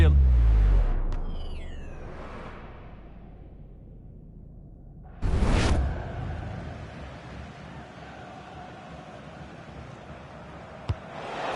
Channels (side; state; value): both; identical; correlation 1.00